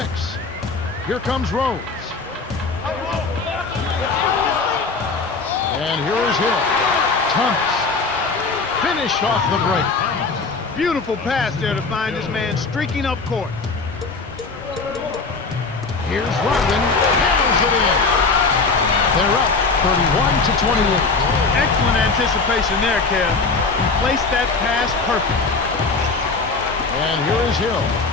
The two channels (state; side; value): quieter; right; 4.2 dB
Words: Here comes Rose. And here is Hill. Thomas. Finished off the break. Beautiful pass there to find his man streaking up court. Here's Rodman. Hammers it in. They're up 31-28. Excellent anticipation there, Kev. He placed that pass perfect. And here is Hill.